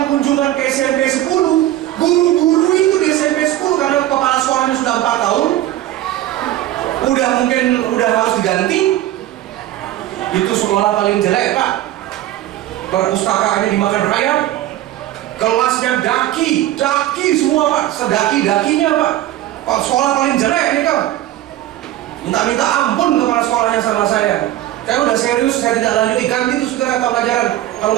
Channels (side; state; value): left; quieter; 14.0 dB